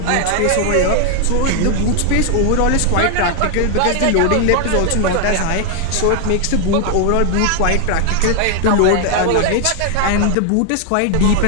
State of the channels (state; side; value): different; both; correlation 0.00